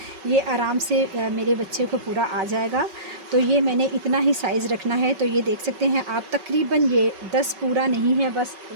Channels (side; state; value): left; late; 5.3 ms